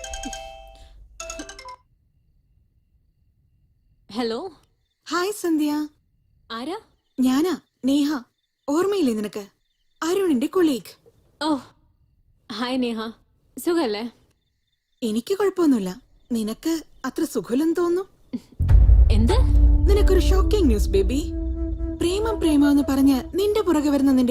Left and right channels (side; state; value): both; identical; correlation 1.00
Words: ഹലോ. ഹായ് സന്ധ്യ. ആരാ? ഞാനാ നേഹ. ഓർമ്മയില്ലേ നിനക്ക്? അരുണിന്റെ കൊളീഗ്. ഓ ഹായ് നേഹ, സുഖല്ലേ? എനിക്ക് കുഴപ്പമൊന്നുമില്ല. നിനക്ക് അത്ര സുഖമില്ലെന്ന് തോന്നുന്നു. എന്ത്? നിനക്കൊരു ഷോക്കിംഗ് ന്യൂസ് ബേബി. പ്രേമം പ്രേമം എന്ന് പറഞ്ഞ് നിന്റെ പുറകെ വരുന്ന